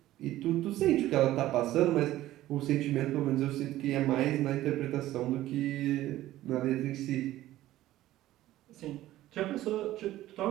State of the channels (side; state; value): left; quieter; 14.9 dB